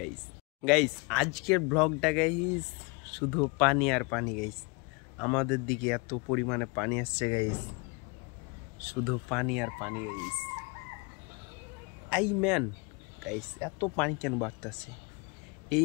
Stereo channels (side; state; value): right; quieter; 30.3 dB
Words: গাইস আজকের ব্লগটা গাইস শুধু পানি আর পানি। গাইস আমাদের দিকে এত পরিমাণে পানি আসছে গাইস, শুধু পানি আর পানি গাইস। গাইস এত পানি কেন বাড়তেছে